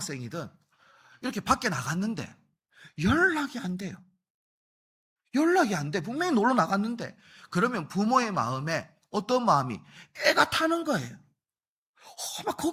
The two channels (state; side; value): identical; both; correlation 1.00